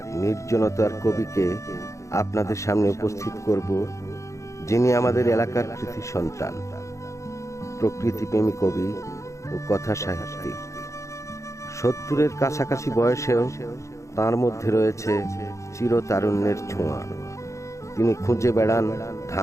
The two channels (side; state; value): right; late; 0.15 ms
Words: নির্জনতার কবিকে আপনাদের সামনে উপস্থিত করব, যিনি আমাদের এলাকার কৃতি সন্তান, প্রকৃতিপ্রেমী কবি ও কথা সাহিত্যিক। 70-এর কাছাকাছি বয়সেও তার মধ্যে রয়েছে চিরতারুণ্যের ছোঁয়া। তিনি খুঁজে বেড়ান